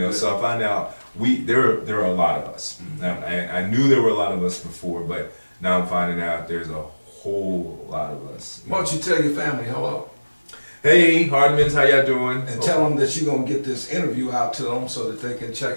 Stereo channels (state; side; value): inverted; both; correlation -1.00